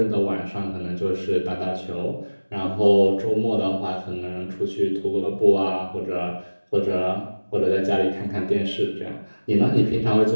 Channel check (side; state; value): both; inverted; correlation -1.00